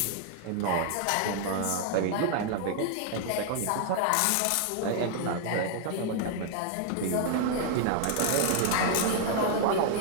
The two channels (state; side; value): different; both; correlation 0.00